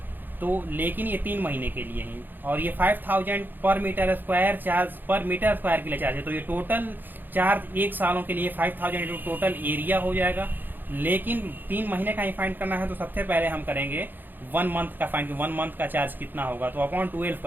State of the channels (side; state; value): left; late; 0.090 ms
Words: तो लेकिन ये 3 महीने के लिए ही, और ये 5000 पर मीटर स्क्वायर चार्ज पर मीटर स्क्वायर के लिए चार्ज है। तो ये टोटल चार्ज 1 सालों के लिए 5000 इंटू टोटल एरिया हो जाएगा। लेकिन 3 महीने का ही फाइंड करना है तो सबसे पहले हम करेंगे 1 मंथ का फाइंड। 1 मंथ का चार्ज कितना होगा, तो अपॉन 12